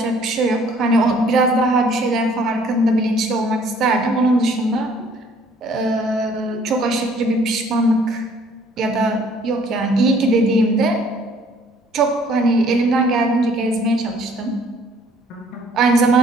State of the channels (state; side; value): normal; both; correlation 0.59